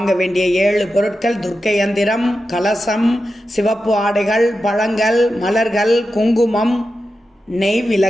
வேண்டிய 7 பொருட்கள்: துர்க்கை யந்திரம், கலசம், சிவப்பு ஆடைகள், பழங்கள், மலர்கள், குங்குமம், நெய்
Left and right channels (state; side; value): normal; both; correlation 0.90